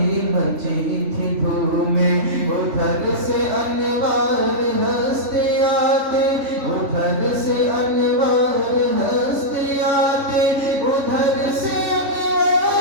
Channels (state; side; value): late; left; 3.5 ms